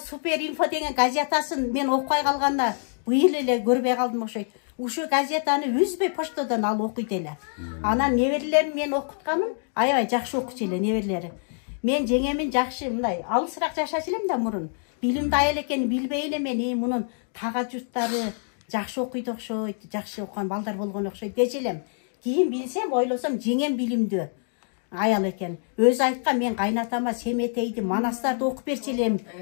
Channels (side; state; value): right; silent; 61 dB below the other